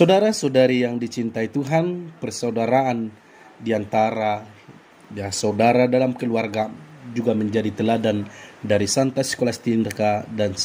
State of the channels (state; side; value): identical; both; correlation 1.00